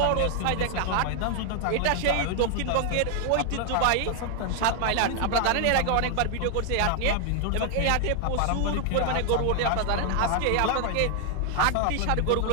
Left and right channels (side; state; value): both; different; correlation 0.00